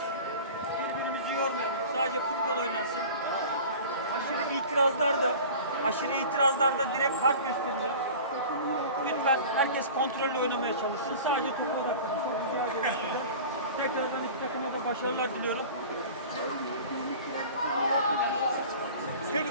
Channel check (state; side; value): inverted; both; correlation -0.39